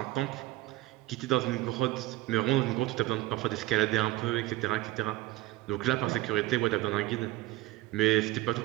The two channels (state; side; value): quieter; left; 17.7 dB